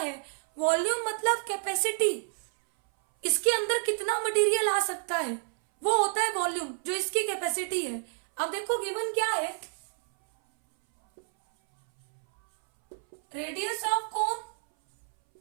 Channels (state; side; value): silent; left; 59 dB below the other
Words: वॉल्यूम मतलब कैपेसिटी, इसके अंदर कितना मटेरियल आ सकता है, वो होता है वॉल्यूम, जो इसकी कैपेसिटी है। अब देखो गिवन क्या है, radius of cone